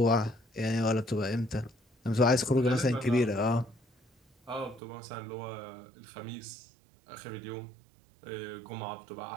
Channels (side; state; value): left; drops out; at 4.8 s